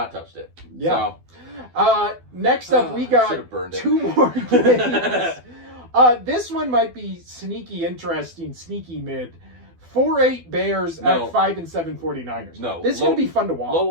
touched it. Yeah. So. Next up, we got 2 more games. This one might be sneaky interesting, sneaky mid. 4-8 Bears at 5-7 49ers. No. This is going to be fun to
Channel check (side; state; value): left; late; 12 ms